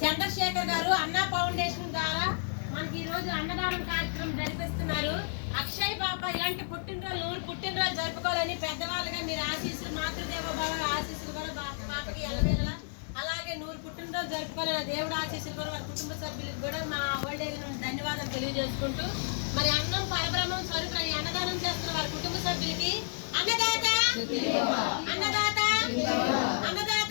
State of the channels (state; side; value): silent; right; digital silence